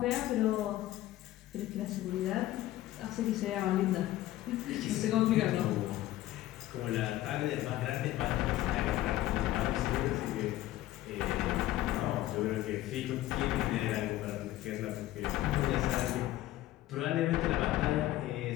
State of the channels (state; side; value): quieter; right; 15.1 dB